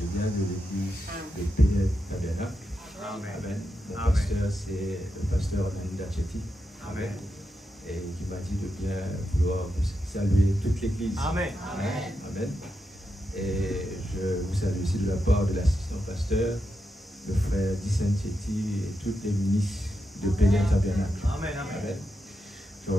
viens de l'église de Péniel Tabernacle. Amen. Mon pasteur, c'est le pasteur Linda Chetty. Amen. Et qui m'a dit de bien vouloir saluer toute l'église. Amen. Amen. Amen. Et je vous salue aussi de la part de l'assistant pasteur, le frère Dicen Chetty et toutes les ministres de Péniel Tabernacle. Amen. Amen. Je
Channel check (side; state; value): both; normal; correlation 0.87